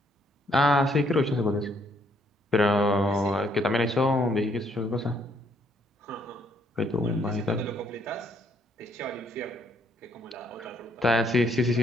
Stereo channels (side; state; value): both; normal; correlation 0.69